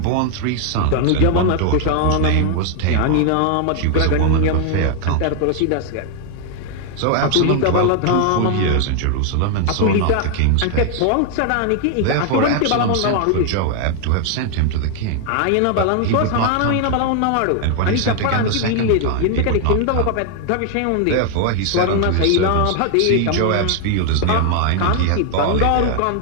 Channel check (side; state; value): both; different; correlation 0.00